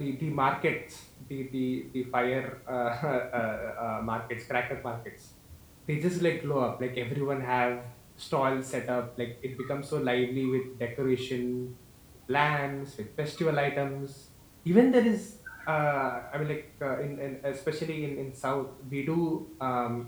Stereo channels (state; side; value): identical; both; correlation 1.00